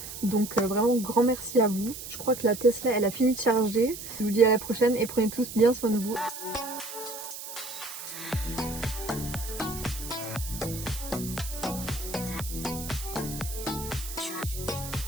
Donc vraiment grand merci à vous. Je crois que la Tesla, elle a fini de charger. Je vous dis à la prochaine et prenez tous bien soin de vous.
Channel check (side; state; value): right; noise; hiss, 10 dB below the sound